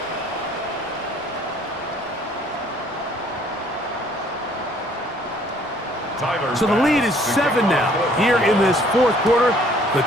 So the lead is 7 now. Here in this fourth quarter, the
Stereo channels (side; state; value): both; normal; correlation 0.59